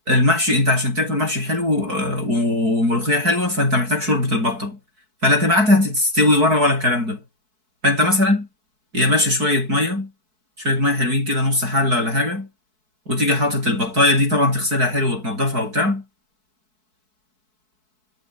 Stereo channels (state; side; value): late; left; 4.6 ms